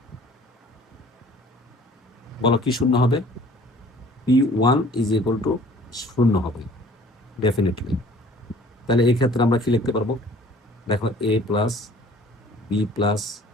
বলো কি 0 হবে, P one is equal to 0 হবে ডেফিনেটলি। তাহলে এই ক্ষেত্রে আমরা কি লিখতে পারবো, দেখো a plus B plus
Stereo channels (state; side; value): normal; both; correlation 0.52